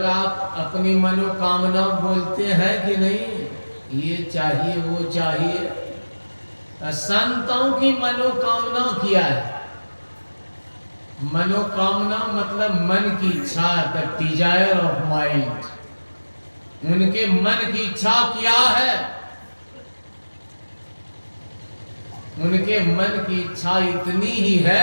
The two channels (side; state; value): both; inverted; correlation -1.00